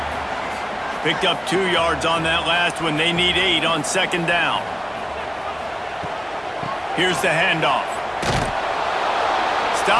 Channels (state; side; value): identical; both; correlation 1.00